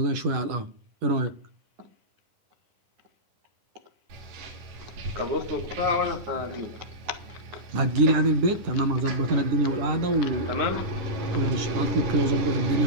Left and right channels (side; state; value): left; late; 10 ms